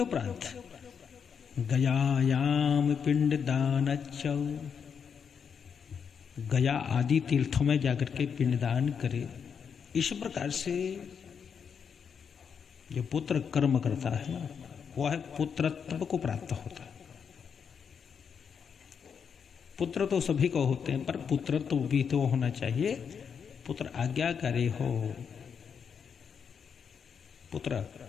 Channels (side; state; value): right; quieter; 6.9 dB